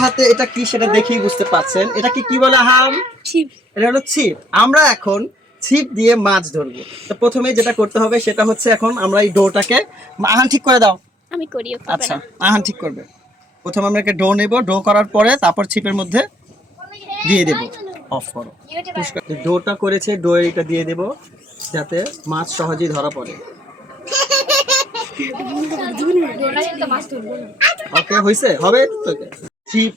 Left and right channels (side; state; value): both; normal; correlation 0.65